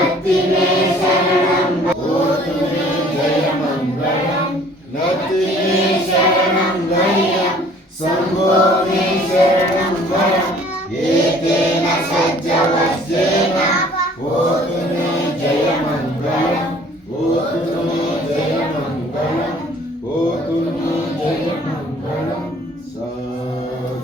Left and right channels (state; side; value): normal; both; correlation 0.54